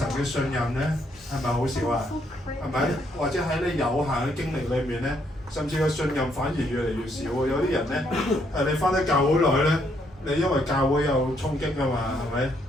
嘅信任咧係咪好少啊？係咪？或者喺你有限嘅經歷裏面咧，甚至個信任反而越嚟越少喎。有啲人咧你返得教會耐咧，你因為教會有衝擊㗎嘛，係咪？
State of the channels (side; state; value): both; normal; correlation 0.72